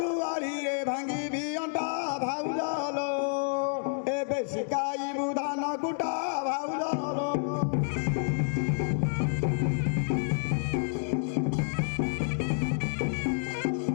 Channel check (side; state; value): right; silent; digital silence